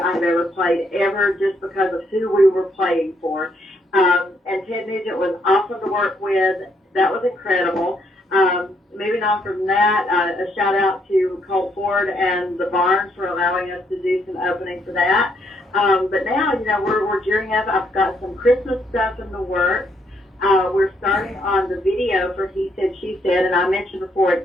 ever played ever, just because of who we were playing for. And Ted Nugent was awesome to work with. That was incredible. Moving on from that, a shout out to Colt Ford and the Barnes for allowing us to do some opening for that. But now, you know, we're gearing up. I've got some Christmas stuff in the works. We're starting on the video for He Said, She Said, and I mentioned before,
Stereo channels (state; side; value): normal; both; correlation 0.73